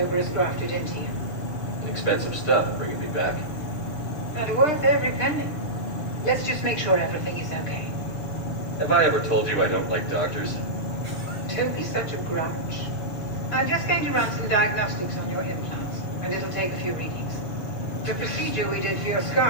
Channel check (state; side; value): late; right; 6.5 ms